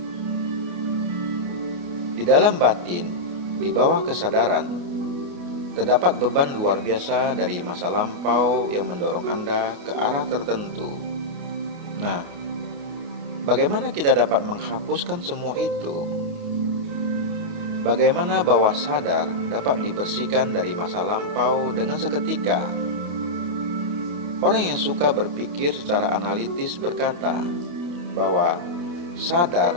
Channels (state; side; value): late; left; 28 ms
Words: Di dalam batin, di bawah kesadaran, terdapat beban luar biasa dari masa lampau yang mendorong Anda ke arah tertentu. Nah, bagaimana kita dapat menghapuskan semua itu? Bagaimana bawah sadar dapat dibersihkan dari masa lampau dengan seketika? Orang yang suka berpikir secara analitis berkata bahwa